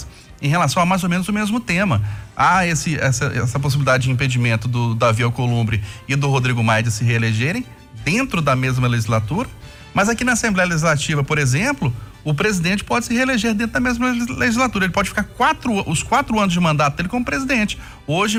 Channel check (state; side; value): identical; both; correlation 1.00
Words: em relação a mais ou menos o mesmo tema. Há essa possibilidade de impedimento do Davi Alcolumbre e do Rodrigo Maia de se reelegerem dentro da mesma legislatura, mas aqui na Assembleia Legislativa, por exemplo, o presidente pode se reeleger dentro da mesma legislatura. Ele pode ficar os 4 anos de mandato dele como presidente. Hoje